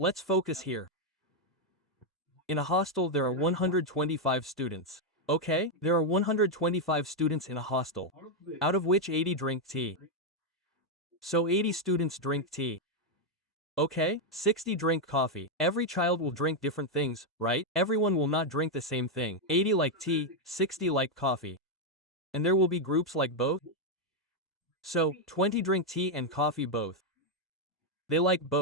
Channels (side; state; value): both; normal; correlation 0.01